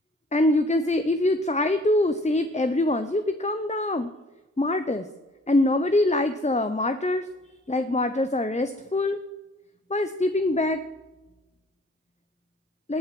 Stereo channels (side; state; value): both; normal; correlation 0.56